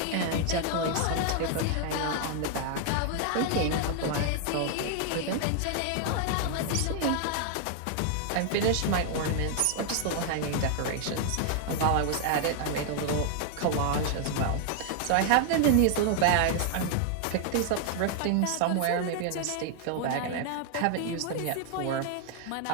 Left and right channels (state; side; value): different; both; correlation 0.00